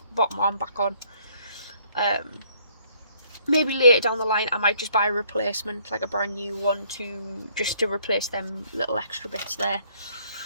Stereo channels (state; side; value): inverted; both; correlation -0.64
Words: bottom arm back on. Maybe later down the line I might just buy a replacement, like a brand new one, just to replace them little extra bits there.